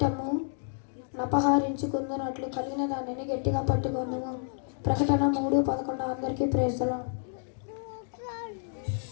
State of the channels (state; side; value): silent; right; digital silence